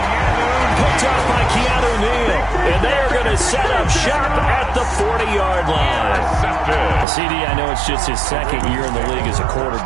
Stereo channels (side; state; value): left; drops out; at 7.1 s